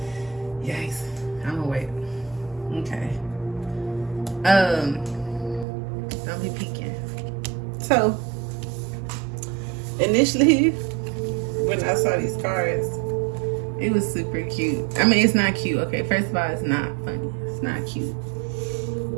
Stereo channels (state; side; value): drops out; left; at 5.7 s